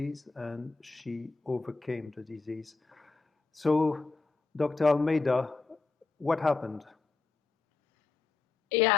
and she overcame the disease. So, Dr. Almeida, what happened?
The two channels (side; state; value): right; quieter; 4.1 dB